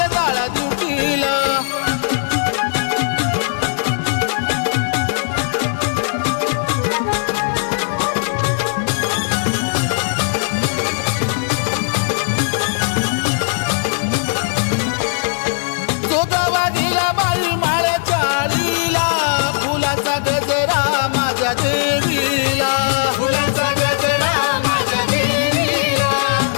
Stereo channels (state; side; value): silent; right; digital silence